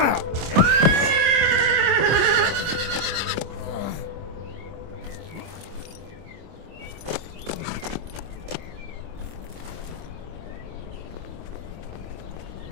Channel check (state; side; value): late; left; 25 ms